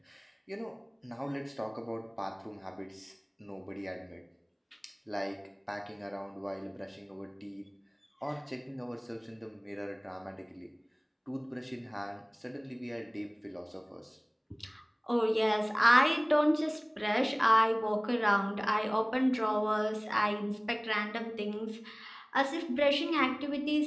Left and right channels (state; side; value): identical; both; correlation 1.00